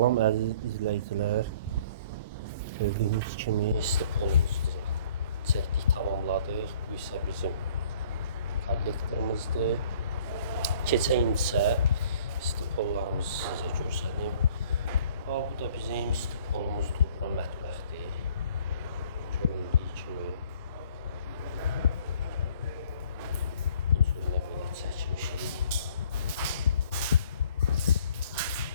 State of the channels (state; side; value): inverted; both; correlation -0.57